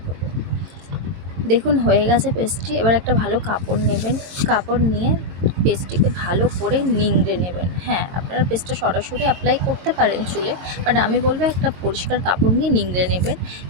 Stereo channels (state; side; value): late; left; 22 ms